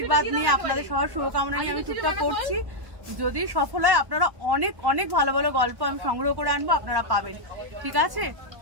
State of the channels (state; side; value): late; left; 1.1 ms